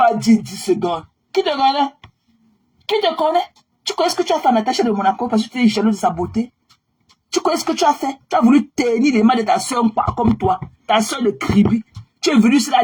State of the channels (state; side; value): identical; both; correlation 1.00